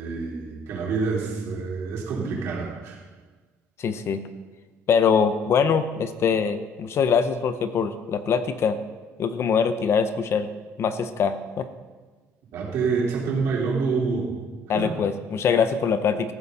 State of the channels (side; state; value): right; quieter; 3.5 dB